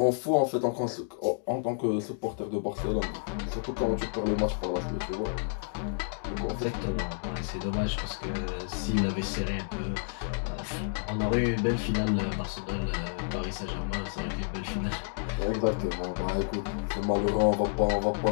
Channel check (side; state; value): right; silent; digital silence